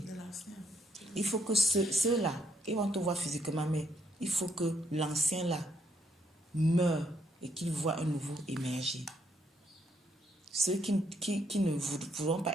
Il faut que ceux-là, ils vont te voir physiquement, mais il faut que l'ancien-là meure et qu'il voit un nouveau émerger. Ceux qui ne voudront pas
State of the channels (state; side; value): normal; both; correlation 0.74